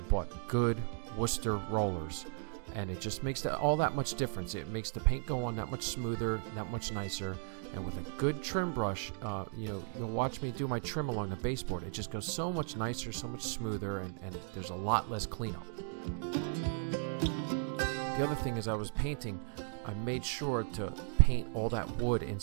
bought good Worcester rollers, and it just makes all that much difference. It makes the paint go on that much smoother, that much nicer, and with a good trim brush, you'll watch me do my trim along the baseboard. It just goes so much nicer, so much smoother, and there's a lot less cleanup. The other thing is I was painting, I made sure to paint all that wood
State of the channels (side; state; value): left; silent; digital silence